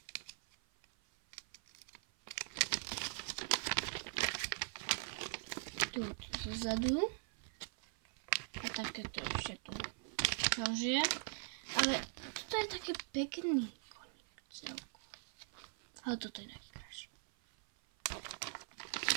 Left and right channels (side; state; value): left; silent; 50 dB below the other